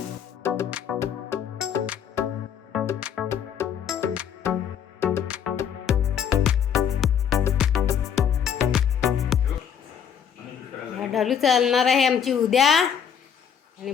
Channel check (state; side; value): quieter; right; 8.0 dB